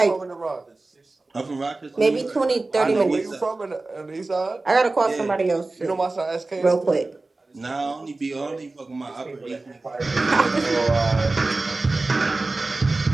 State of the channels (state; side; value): quieter; left; 3.3 dB